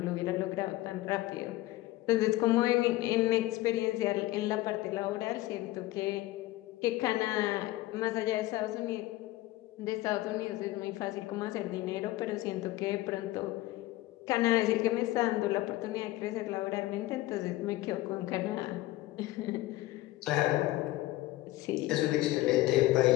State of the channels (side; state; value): right; quieter; 17.3 dB